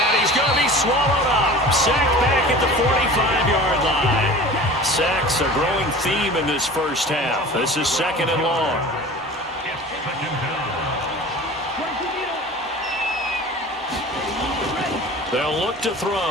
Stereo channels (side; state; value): both; normal; correlation 0.39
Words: he's going to be swallowed up. Sacked back at the 45-yard line. Sacks a growing theme in this first half. This is 2nd and long. They'll look to